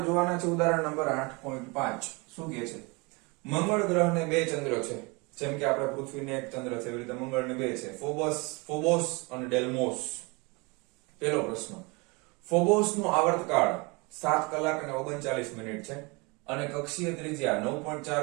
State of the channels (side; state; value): left; quieter; 28.0 dB